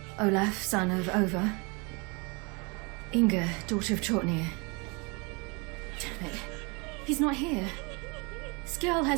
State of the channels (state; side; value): quieter; left; 30.2 dB